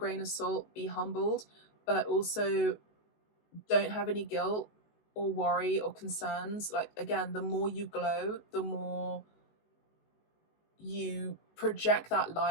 of salt, be humbled, but also don't have any guilt or worry or concerns. Like, again, the more you glow, the more you project that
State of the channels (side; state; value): right; late; 19 ms